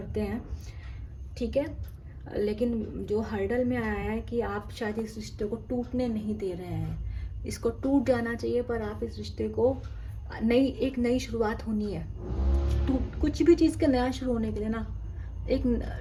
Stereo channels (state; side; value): identical; both; correlation 1.00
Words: हैं, ठीक है। लेकिन जो हर्डल में आया है कि आप शायद इस रिश्ते को टूटने नहीं दे रहे हैं। इसको टूट जाना चाहिए, पर आप इस रिश्ते को एक नई शुरुआत होनी है। कुछ भी चीज़ का नया शुरू होने के लिए ना